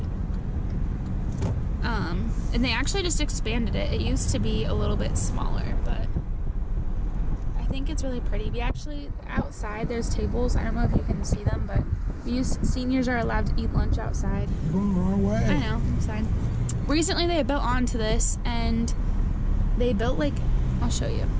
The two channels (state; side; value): identical; both; correlation 1.00